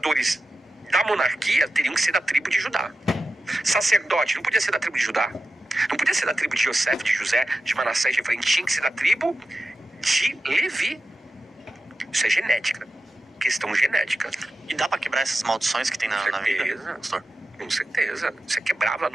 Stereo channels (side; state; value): both; normal; correlation 0.92